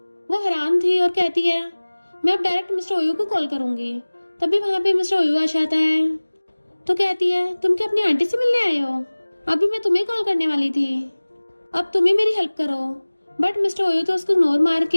वो हैरान थी और कहती है मैं अब डायरेक्ट मिस्टर ओयू को कॉल करूंगी। तभी वहां पे मिस्टर ओयू आ जाता है। तो कहती है तुम क्या अपनी आंटी से मिलने आए हो, अभी मैं तुम्हें कॉल करने वाली थी, अब तुम ही मेरी हेल्प करो। बट मिस्टर ओयू तो उसको इग्नोर मार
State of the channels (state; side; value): inverted; both; correlation -1.00